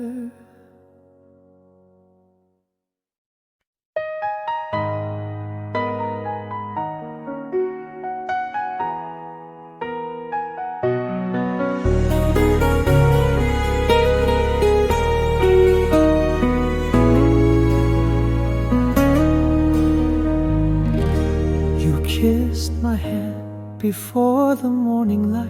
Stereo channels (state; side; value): identical; both; correlation 1.00